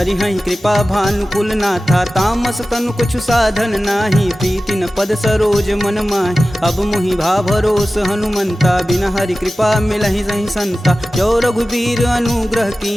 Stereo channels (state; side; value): normal; both; correlation 0.95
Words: हई कृपा भानुकुल नाथा। तामस तनु कुछ साधन नाही, प्रीति न पद सरोज मन माहि। अब मुहि भा भरोस हनुमंता, बिना हरि कृपा मिलहि सही संता। जो रघुबीर अनुग्रह